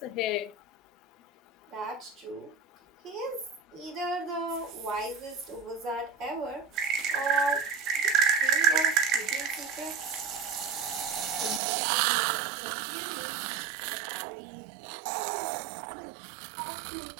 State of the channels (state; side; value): drops out; left; at 11.6 s